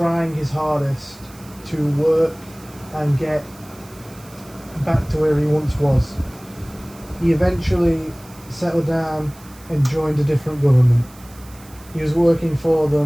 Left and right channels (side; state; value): right; noise; hiss, 23 dB below the sound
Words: his hardest to work and get back to where he once was. He eventually settled down and joined a different government. He was working for